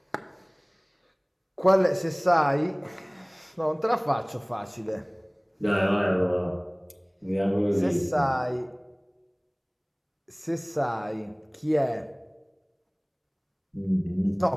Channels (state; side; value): identical; both; correlation 1.00